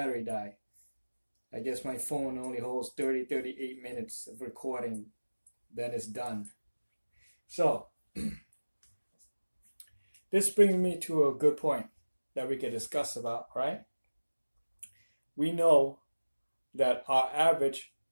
died. I guess my phone only holds 38 minutes of recording, then it's done. So, this brings me to a good point that we can discuss about, right? We know that our average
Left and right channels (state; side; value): inverted; both; correlation -1.00